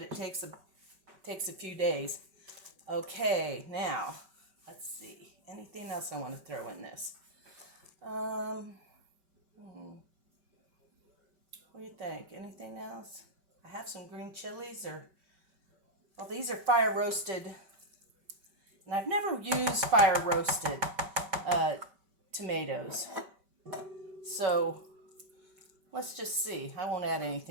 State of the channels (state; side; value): late; left; 5.2 ms